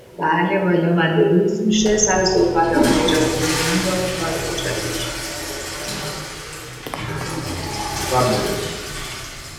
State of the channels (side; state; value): both; identical; correlation 1.00